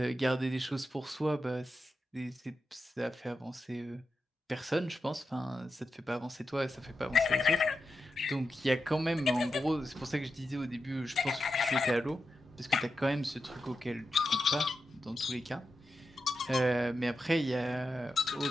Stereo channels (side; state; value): both; normal; correlation 0.89